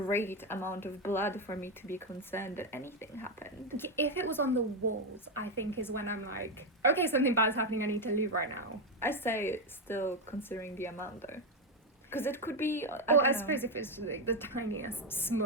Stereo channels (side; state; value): both; normal; correlation 0.07